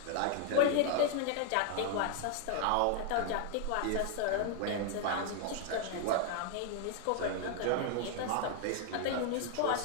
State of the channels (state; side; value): different; both; correlation 0.00